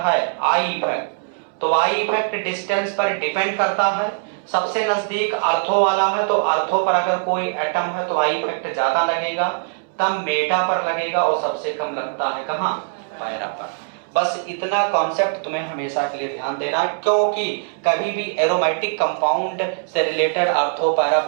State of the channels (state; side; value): silent; left; 65 dB below the other